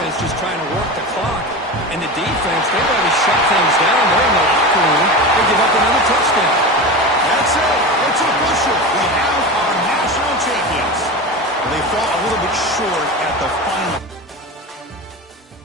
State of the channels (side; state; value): both; normal; correlation 0.26